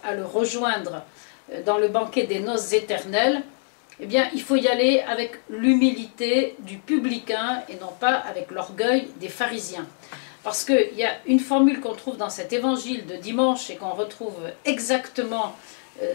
à le rejoindre dans le banquet des noces éternelles, eh bien, il faut y aller avec l'humilité du publicain et non pas avec l'orgueil des pharisiens. Parce qu'il y a une formule qu'on trouve dans cet évangile de dimanche et qu'on retrouve exactement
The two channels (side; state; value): right; silent; 60 dB below the other